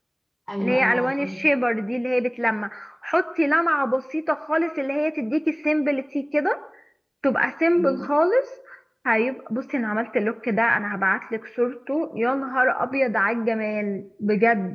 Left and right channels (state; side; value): identical; both; correlation 1.00